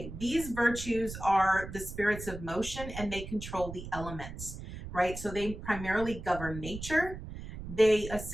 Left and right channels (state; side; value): noise; right; rumble, 10 dB below the sound